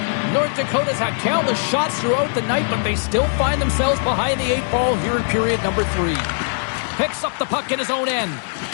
North Dakota's had countless shots throughout the night, but they still find themselves behind the 8 ball here in period number 3. Picks up the puck in his own end.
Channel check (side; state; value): right; silent; 65 dB below the other